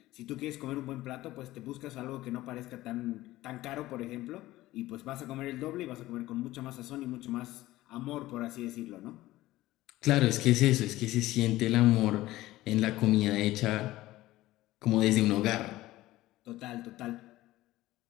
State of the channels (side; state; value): right; quieter; 16.8 dB